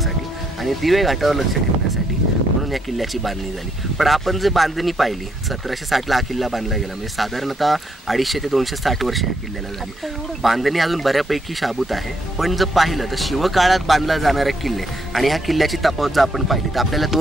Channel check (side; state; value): both; normal; correlation 0.74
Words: आणि दिवे घाटावर लक्ष ठेवण्यासाठी म्हणून या किल्ल्याची बांधणी झाली. पण आपण जे बांधणी पाहिली 1760ला हा किल्ला बांधला गेला, म्हणजे साधारणतः 250 ते 260 वर्ष या किल्ल्याला झाली. बांधणी अजून बऱ्यापैकी शाबूत आहे. पण जर पाहिलं तर शिवकाळात बांधला जाणारे किल्ले आणि ह्या किल्ल्याची तफावत जर आपण पाहिली तर आपल्याला